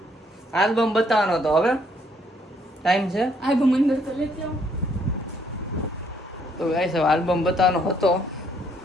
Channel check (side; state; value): both; normal; correlation 0.68